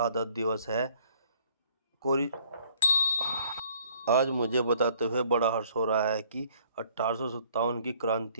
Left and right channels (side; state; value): both; inverted; correlation -0.59